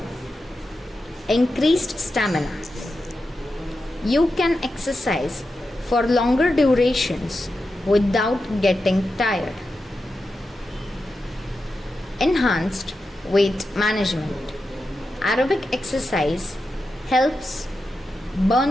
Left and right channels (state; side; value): normal; both; correlation 0.90